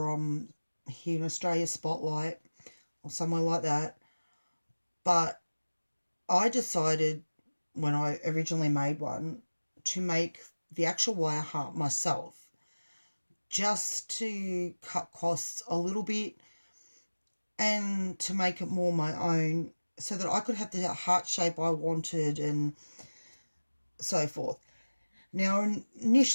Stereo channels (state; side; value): inverted; both; correlation -1.00